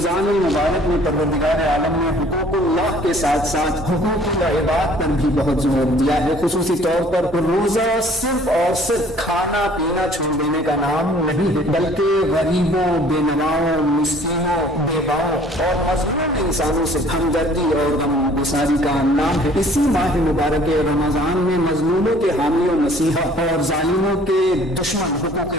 المبارک میں پروردگار عالم نے حقوق اللہ کے ساتھ ساتھ حقوق العباد پر بھی بہت زور دیا ہے۔ خصوصی طور پر روزہ صرف اور صرف کھانا پینا چھوڑ دینے کا نام نہیں ہے، بلکہ غریبوں، بے نواؤں، مسکینوں، بیواؤں اور مظلوم انسانوں سے ہمدردی اور غم گساری کا نام ہے۔ اسی ماہ مبارک رمضان میں مظلوموں کے حامی و مسیحا اور ظالموں کے دشمن حقوق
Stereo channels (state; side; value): normal; both; correlation 0.54